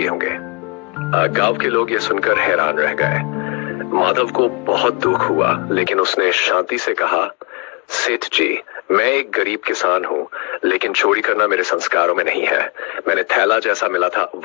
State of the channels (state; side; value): quieter; right; 31.4 dB